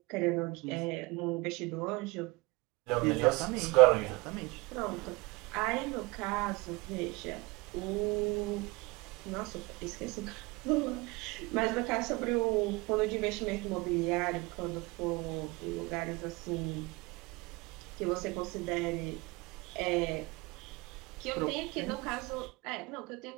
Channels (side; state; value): left; quieter; 24.2 dB